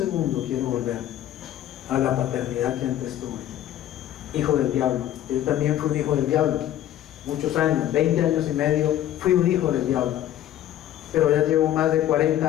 quiero volver a la paternidad que antes tuve. Hijo del diablo. Yo también fui un hijo del diablo. Muchos años, 20 años y medio, fui un hijo del diablo. Pero ya llevo más de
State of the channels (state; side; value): quieter; right; 12.2 dB